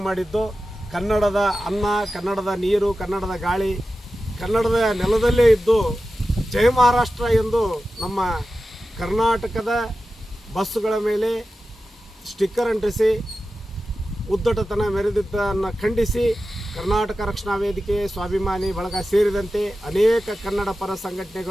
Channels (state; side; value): normal; both; correlation 0.93